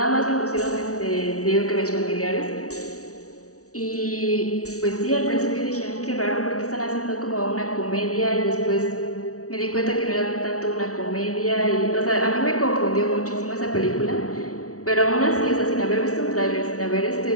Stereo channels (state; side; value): late; right; 0.65 ms